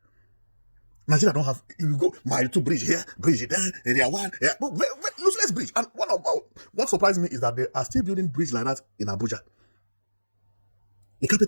Nigeria don't have, you go mile 2 bridge here, bridge there, area 1, yeah, but useless bridge. And what surprised me is that they are still building bridge like that in Abuja. The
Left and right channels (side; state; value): both; inverted; correlation -1.00